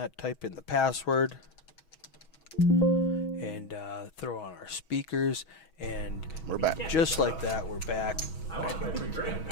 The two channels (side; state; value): right; late; 6.2 ms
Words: type in the password, and throw on our speakers, and We're back. just like that, we're back.